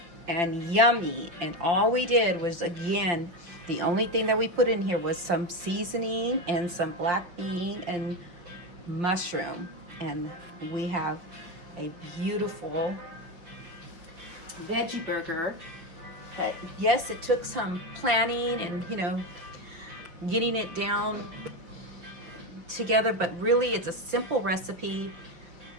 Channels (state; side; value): late; left; 5.8 ms